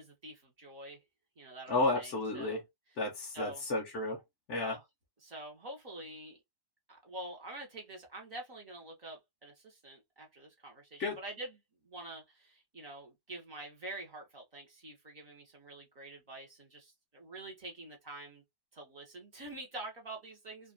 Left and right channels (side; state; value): right; late; 1.1 ms